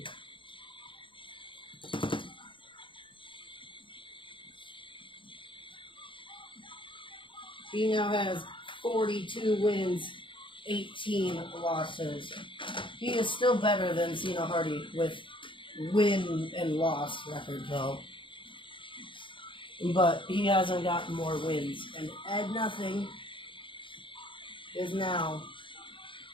He now has 42 wins, 18 losses. He is still better than Cena Hardy with win and loss record though. But he hasn't gotten more wins. And Ed Nothing is now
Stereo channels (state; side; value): late; right; 0.24 ms